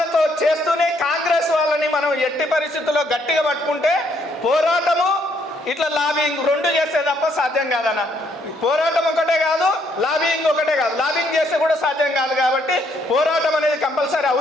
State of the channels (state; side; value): normal; both; correlation 0.70